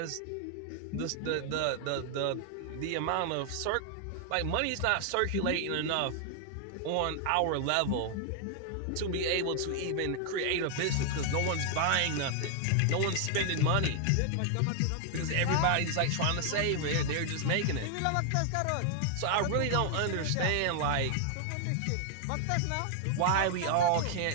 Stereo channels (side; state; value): both; different; correlation 0.00